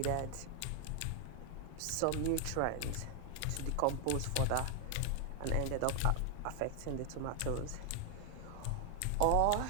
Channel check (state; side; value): different; both; correlation 0.00